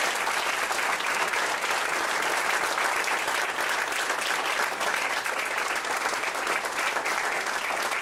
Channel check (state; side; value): identical; both; correlation 1.00